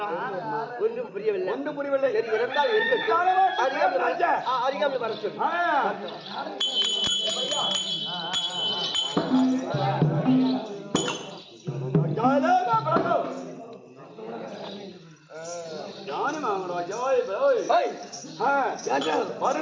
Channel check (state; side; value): identical; both; correlation 1.00